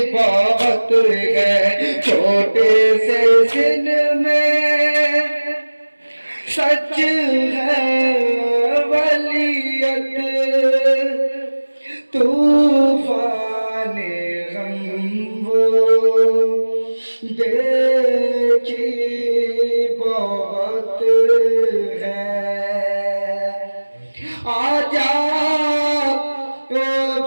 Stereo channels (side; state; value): both; inverted; correlation -1.00